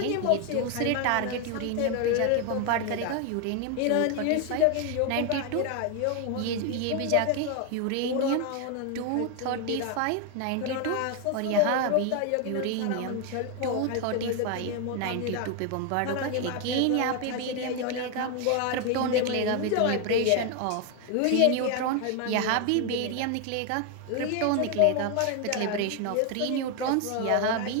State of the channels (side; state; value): both; different; correlation 0.01